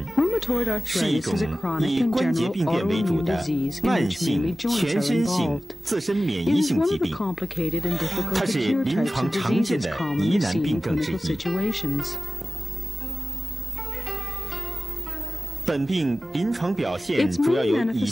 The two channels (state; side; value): normal; both; correlation 0.96